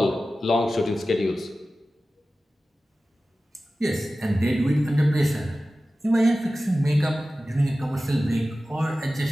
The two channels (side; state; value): both; normal; correlation 0.95